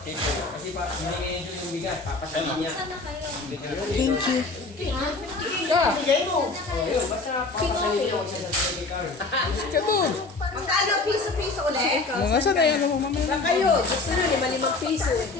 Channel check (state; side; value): quieter; right; 3.6 dB